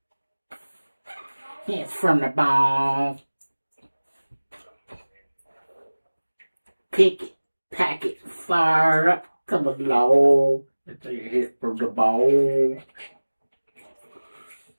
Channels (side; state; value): both; inverted; correlation -1.00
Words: It's from the bone. Pick it, pack it, fire up, come along. It's a hit from the bone.